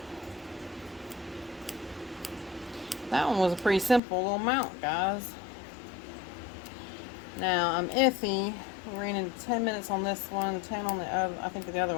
That one was a pretty simple little mount, guys. Now I'm iffy. We ran into 10 minutes on this one, 10 on the other. I think the other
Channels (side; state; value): right; drops out; at 4.0 s